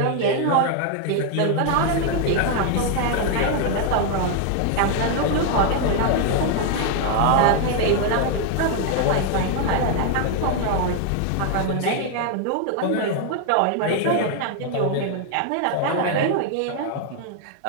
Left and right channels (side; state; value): both; different; correlation 0.00